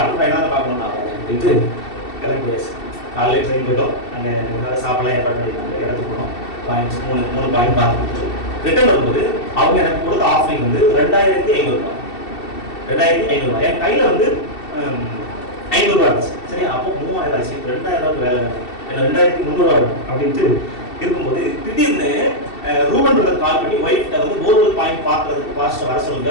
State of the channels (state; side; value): late; right; 2.7 ms